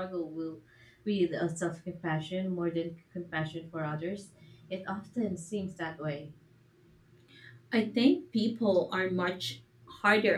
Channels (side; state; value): both; identical; correlation 1.00